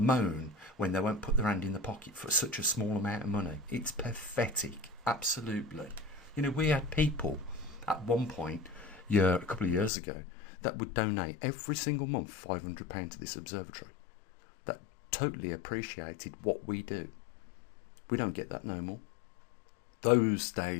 when they won't put their hand in the pocket for such a small amount of money. It's pathetic, absolutely. You know, we had people at one point, a couple of years ago, that would donate every single month £500 to this observatory. That totally appreciated what we do. We don't get that no more. Those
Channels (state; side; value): drops out; right; at 9.9 s